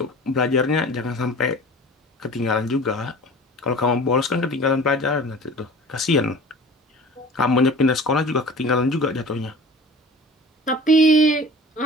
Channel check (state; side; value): normal; both; correlation 0.41